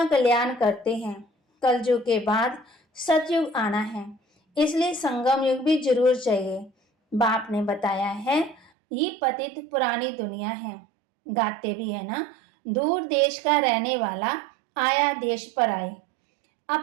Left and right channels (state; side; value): drops out; left; at 8.7 s